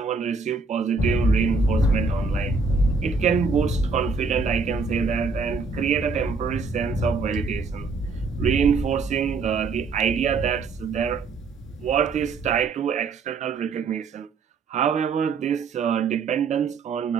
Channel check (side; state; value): left; quieter; 4.5 dB